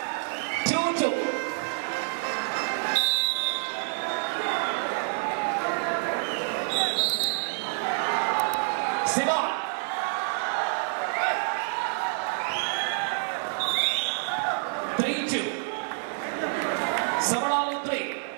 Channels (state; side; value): silent; left; 60 dB below the other